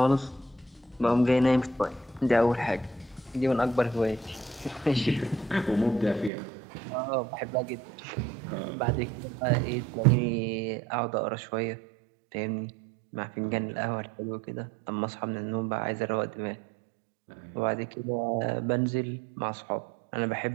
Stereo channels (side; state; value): left; drops out; at 6.3 s